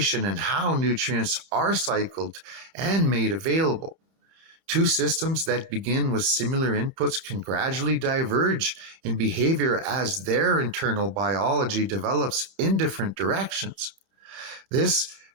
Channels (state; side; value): late; left; 31 ms